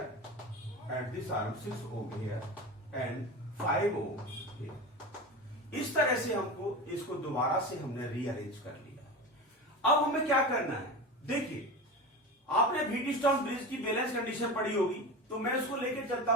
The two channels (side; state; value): both; normal; correlation 0.27